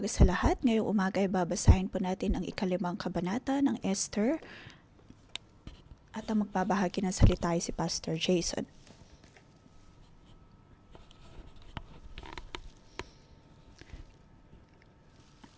sa lahat. Ngayong umaga ay babasahin po natin ang ikalimang kabanata ng Esther at ang magbabahagi ng salita ay si Pastor Jason.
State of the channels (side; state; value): both; identical; correlation 1.00